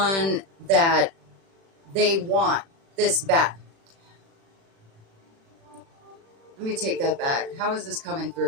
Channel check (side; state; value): left; late; 36 ms